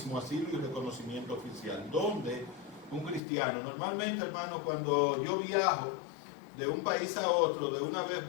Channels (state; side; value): drops out; right; at 3.2 s